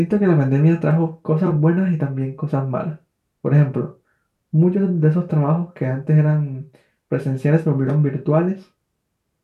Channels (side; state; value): both; identical; correlation 1.00